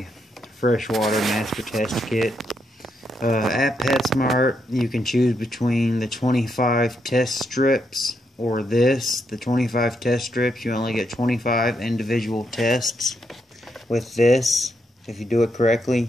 Freshwater Master Test Kit. At PetSmart, you can choose between the 25 test strips or this. The 25 test strips, you only get 25 individual tests. With this, if you do it correctly,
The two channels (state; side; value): normal; both; correlation 0.79